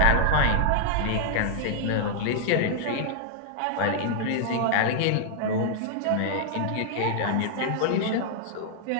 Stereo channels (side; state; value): both; different; correlation -0.01